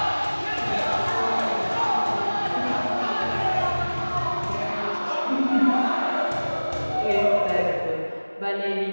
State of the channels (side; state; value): both; inverted; correlation -1.00